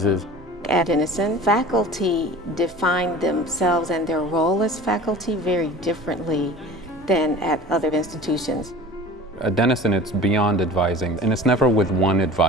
At Denison, faculty define themselves and their role as faculty very differently than at other institutions. At Denison, it's beyond advising, and it's never with one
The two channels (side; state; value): both; normal; correlation 0.41